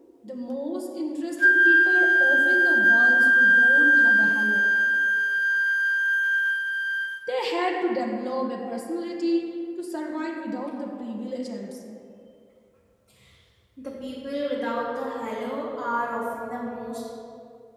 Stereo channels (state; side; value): identical; both; correlation 1.00